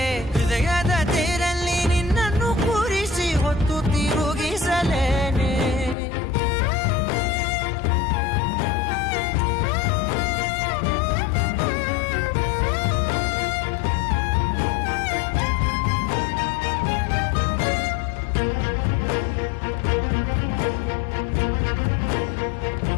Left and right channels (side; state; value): right; drops out; at 6.0 s